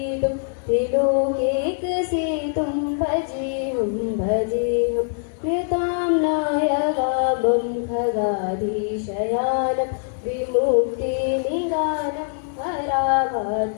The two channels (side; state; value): right; silent; digital silence